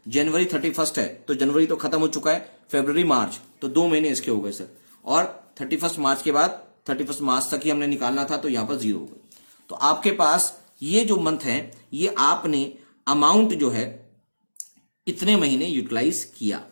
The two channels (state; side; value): inverted; both; correlation -1.00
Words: जनवरी 31 है तो जनवरी तो खत्म हो चुका है, फरवरी, मार्च, तो 2 महीने इसके हो गए सर। और 31 मार्च के बाद 31 मार्च तक ही हमने निकालना था, तो यहां पर 0 हो गए। तो आपके पास ये जो मंथ है, ये आपने अमाउंट जो है इतने महीने यूटिलाइज किया,